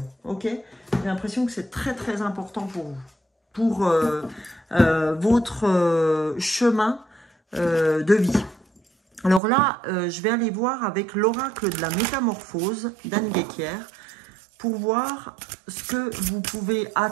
Ok? J'ai l'impression que c'est très très important pour vous, pour votre chemin de vie. Alors là, je vais aller voir avec l'oracle de la métamorphose d'Anne Guéquière pour voir ce que vous pouvez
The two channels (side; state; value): left; drops out; at 9.4 s